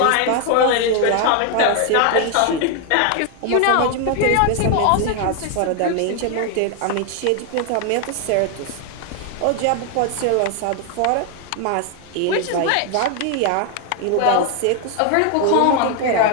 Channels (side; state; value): both; different; correlation 0.00